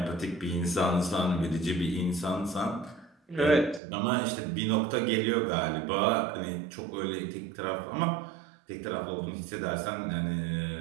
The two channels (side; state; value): left; drops out; at 3.8 s